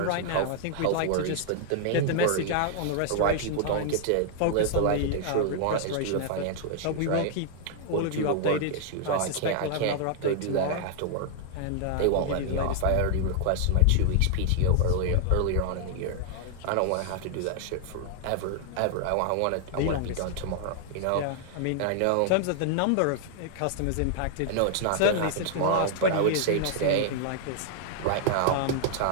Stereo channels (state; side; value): different; both; correlation -0.01